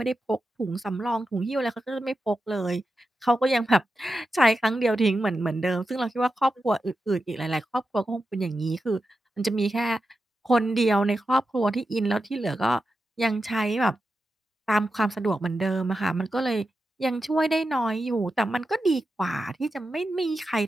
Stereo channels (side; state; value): both; normal; correlation 0.90